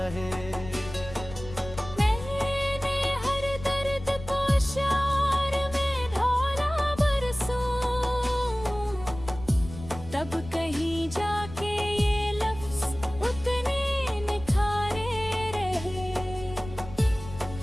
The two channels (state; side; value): noise; left; rumble, 13 dB below the sound